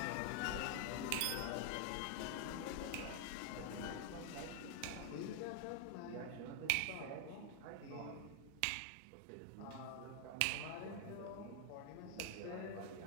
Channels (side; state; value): both; different; correlation 0.00